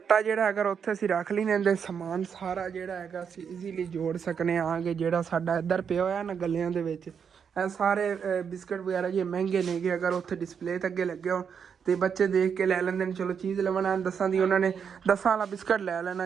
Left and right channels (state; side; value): quieter; left; 7.0 dB